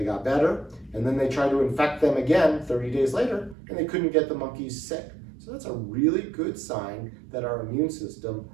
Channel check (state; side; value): drops out; left; at 3.6 s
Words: got better, and then they tried to infect them again 30 days later, and they couldn't get the monkeys sick. So that's a really good sign that our immune system